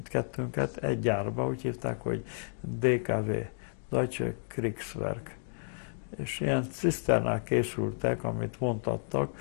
egy gyárba, úgy hívták, hogy DKW, Deutsche Kriegswerk. És ilyen ciszternák készültek, amit vontattak,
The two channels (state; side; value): silent; right; digital silence